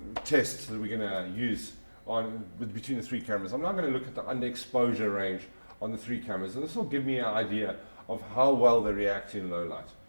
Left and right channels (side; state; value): both; inverted; correlation -1.00